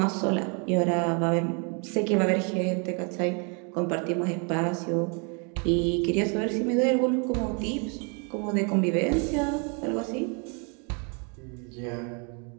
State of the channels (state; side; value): quieter; left; 36.2 dB